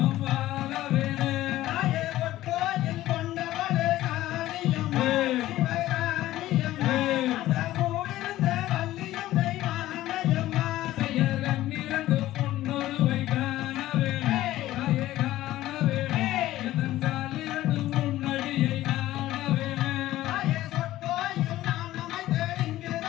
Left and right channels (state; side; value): quieter; right; 15.1 dB